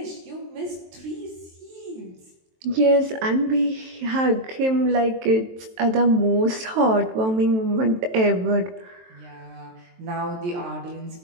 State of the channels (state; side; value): late; left; 23 ms